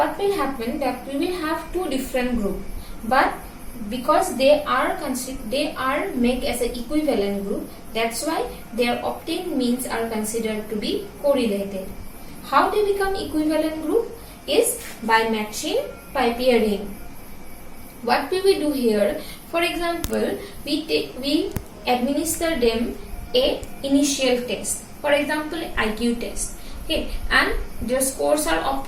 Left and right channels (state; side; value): identical; both; correlation 1.00